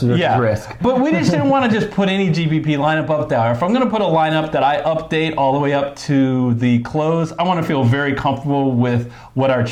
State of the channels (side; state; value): both; identical; correlation 1.00